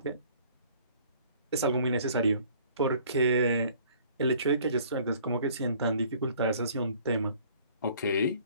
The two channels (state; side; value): inverted; both; correlation -0.55